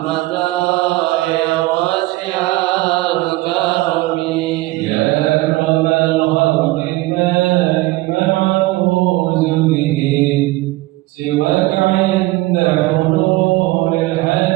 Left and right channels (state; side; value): quieter; left; 19.5 dB